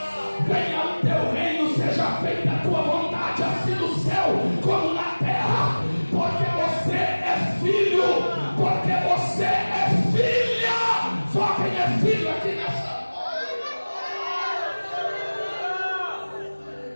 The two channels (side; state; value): both; inverted; correlation -1.00